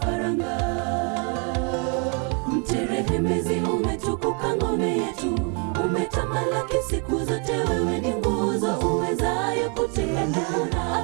Mterehemezi umetukuka ngome yetu, umetamalaki siku zote, wewe ni nguzo uwezayo kutegemea na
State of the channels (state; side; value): quieter; left; 37.0 dB